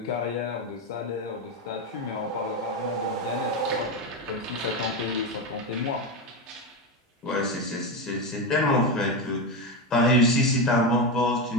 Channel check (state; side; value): normal; both; correlation 0.14